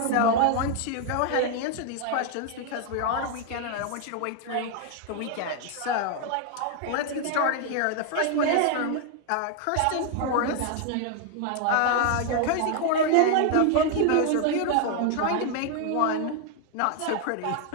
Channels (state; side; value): different; both; correlation 0.00